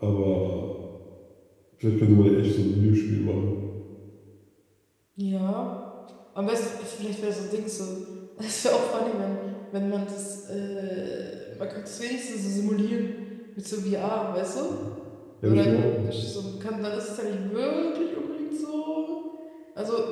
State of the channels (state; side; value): identical; both; correlation 1.00